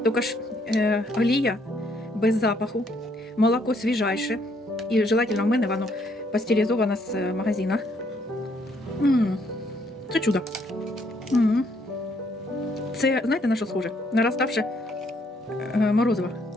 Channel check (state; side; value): normal; both; correlation 0.69